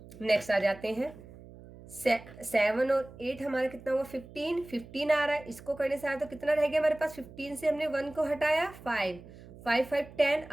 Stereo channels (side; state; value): right; noise; hum, 18 dB below the sound